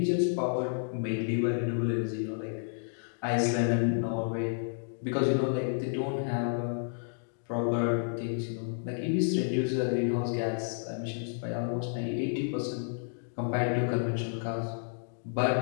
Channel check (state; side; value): silent; right; digital silence